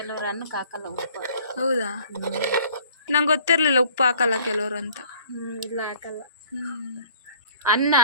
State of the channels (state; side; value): inverted; both; correlation -0.51